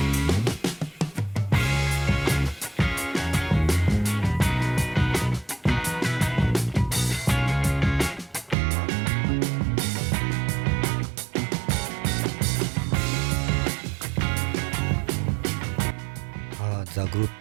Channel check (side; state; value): left; drops out; at 8.6 s